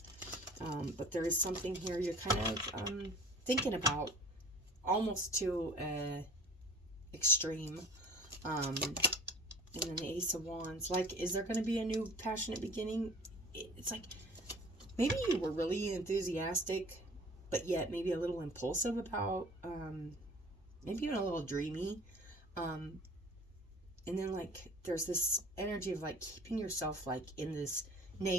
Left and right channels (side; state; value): both; normal; correlation 0.44